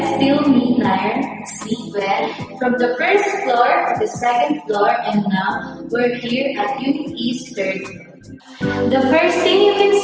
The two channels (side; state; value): both; identical; correlation 1.00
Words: still me, Nair, Sleep Well, from the first floor to the second floor, and now we're here at Unit East third floor. The first thing you can